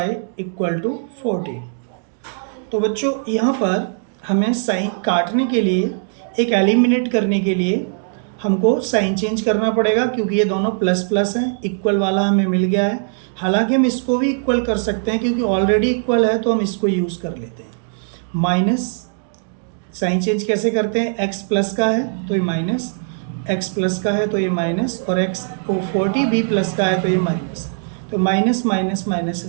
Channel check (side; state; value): left; silent; digital silence